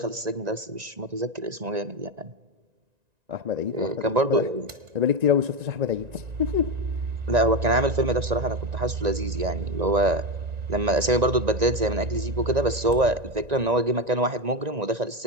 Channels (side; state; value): left; late; 1.9 ms